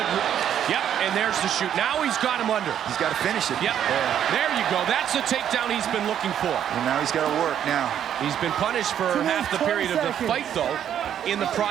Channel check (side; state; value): left; quieter; 9.8 dB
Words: yep, and there's the shoot. Now he's got him under. He's got to finish it. Yep, there you go. That's the takedown he's been looking for. And now he's got to work now. He's been punished for half the period of the fight, though, in the